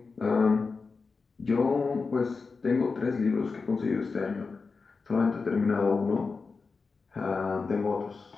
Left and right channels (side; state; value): right; quieter; 4.5 dB